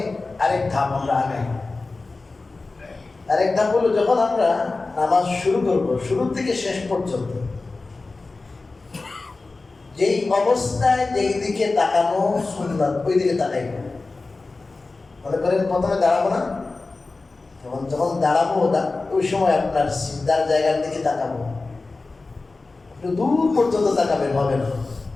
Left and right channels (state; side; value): quieter; right; 3.6 dB